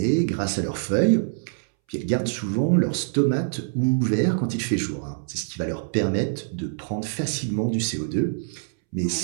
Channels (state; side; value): silent; left; 62 dB below the other